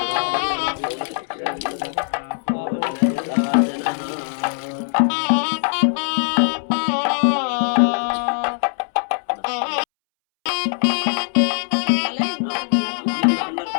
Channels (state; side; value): silent; right; 65 dB below the other